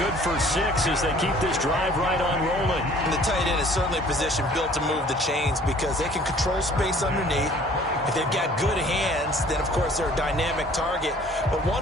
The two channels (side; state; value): both; normal; correlation 0.53